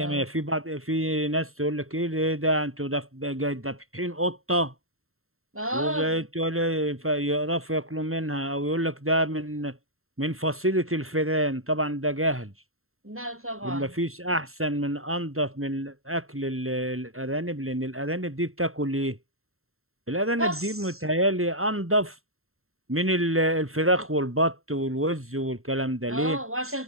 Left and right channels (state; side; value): late; left; 0.62 ms